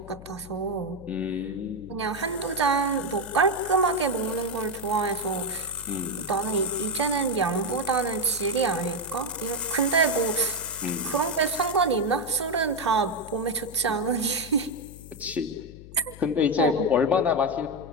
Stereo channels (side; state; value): left; noise; hum, 17 dB below the sound